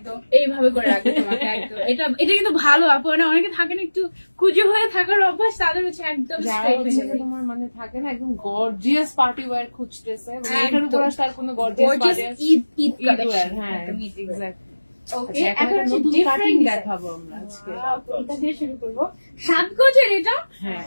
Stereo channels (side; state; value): both; inverted; correlation -1.00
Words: এইভাবে করে রাখবে তোমাকে একদম। এটা কিন্তু ভালো আপু, না অনেকে থাকে না একটু কুজো হয়ে থাকার অভ্যাস, তাদের হচ্ছে একদম স্ট্রেট হয়ে যাবে। তোমার মানে থাকে না একদম গর্জিয়াস পার্টি ওয়্যার খুঁজতেছে, এটার উপর আর কোনো গর্জিয়াস ঈদ কালেকশন। হ্যাঁ এক্স্যাক্টলি। ওকে, এখন হচ্ছে ডিফারেন্ট দেখাবো আমরা আজকে। এটা দিয়ে শুরু করব। 7 গজের এটা। হ্যাঁ,